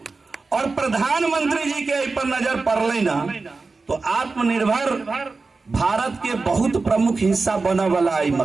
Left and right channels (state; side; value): quieter; left; 4.0 dB